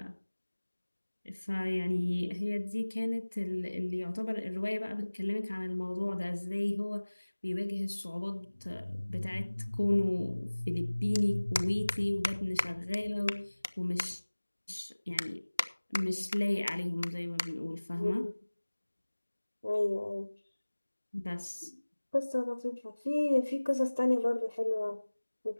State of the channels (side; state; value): both; inverted; correlation -1.00